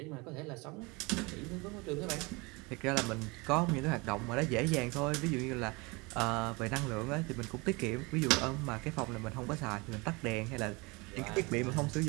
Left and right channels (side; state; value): left; quieter; 26.5 dB